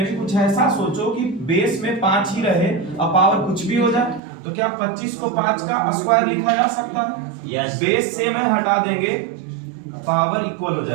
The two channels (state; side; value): drops out; left; at 4.2 s